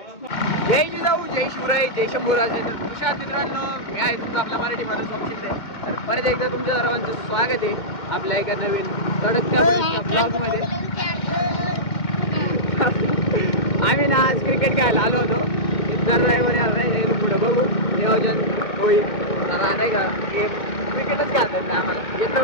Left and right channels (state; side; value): late; right; 2.1 ms